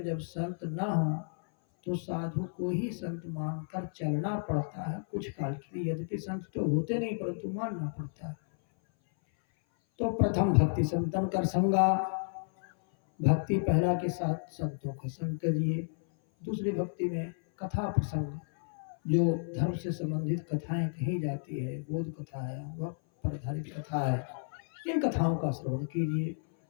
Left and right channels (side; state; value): right; silent; 56 dB below the other